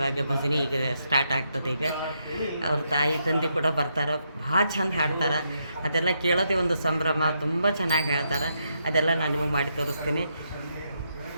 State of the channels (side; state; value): both; inverted; correlation -0.79